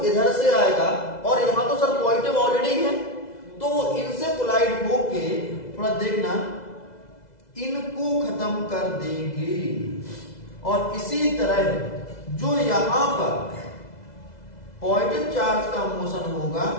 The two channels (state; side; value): late; right; 2.0 ms